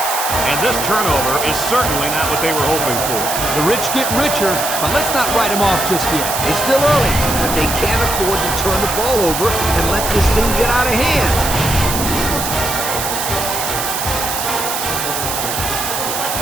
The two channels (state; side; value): noise; right; hiss, 3 dB below the sound